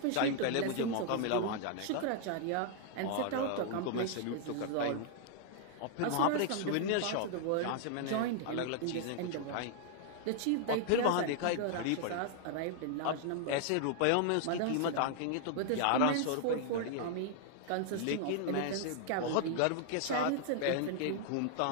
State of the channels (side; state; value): both; different; correlation 0.00